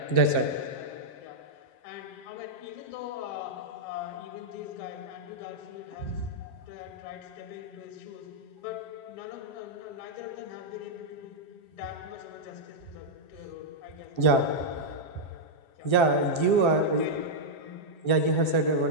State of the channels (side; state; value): right; late; 7.5 ms